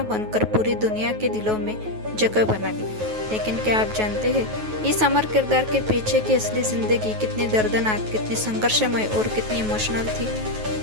बनकर पूरी दुनिया के दिलों में जगह बना ली। लेकिन क्या आप जानते हैं, इस अमर किरदार के पीछे की असली जिंदगी कितनी दर्दनाक, कितनी संघर्षमय और कितनी इमोशनल थी।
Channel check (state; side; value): late; left; 9.3 ms